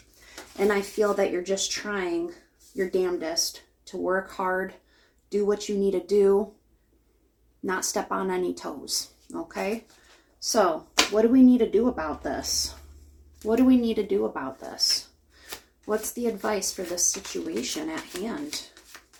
and I feel that you're just trying your damnedest to work hard, do what you need to do, not step on any toes, okay? So, what do we need to do about this? What do we need to do about this? What's the advice for this situation at hand?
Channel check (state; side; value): identical; both; correlation 1.00